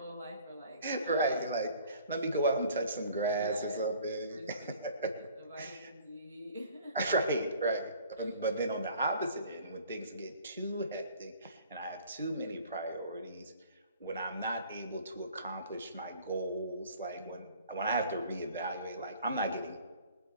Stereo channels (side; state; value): both; inverted; correlation -0.52